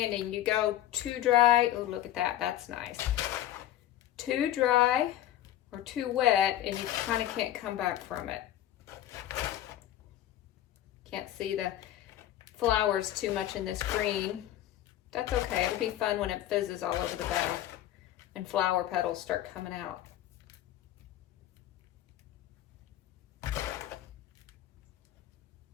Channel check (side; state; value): right; quieter; 12.9 dB